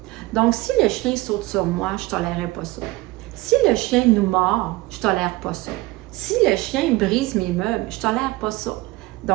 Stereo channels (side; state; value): left; quieter; 20.2 dB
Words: Donc, si le chien saute sur moi, je ne tolérerai pas ça. Si le chien nous mord, je ne tolère pas ça. Si le chien brise mes meubles, je ne tolère pas ça.